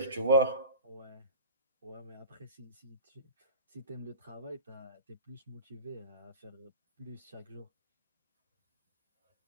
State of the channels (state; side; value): inverted; both; correlation -0.35